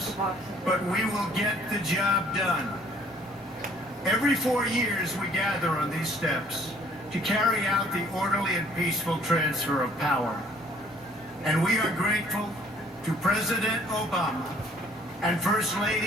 but we will get the job done. Every 4 years, we gather on these steps to carry out the orderly and peaceful transfer of power. And we are grateful to President Obama and First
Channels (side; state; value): both; normal; correlation 0.59